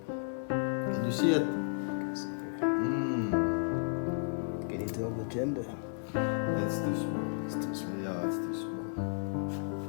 Can you see it? Can you tell the gender? It's too small. It's too small. Yeah, it's too small.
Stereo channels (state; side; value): silent; right; digital silence